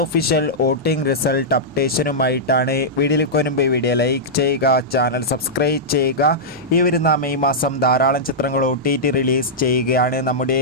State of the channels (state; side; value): noise; right; rumble, 28 dB below the sound